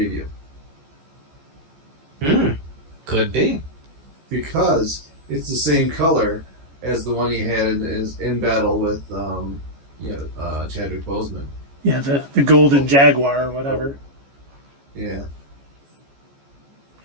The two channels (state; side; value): late; left; 14 ms